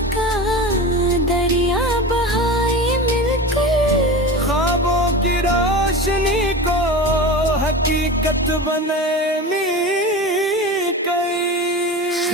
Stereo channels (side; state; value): both; normal; correlation 0.29